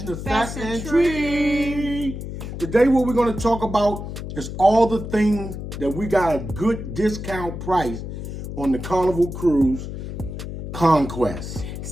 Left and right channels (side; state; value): left; noise; hum, 7 dB below the sound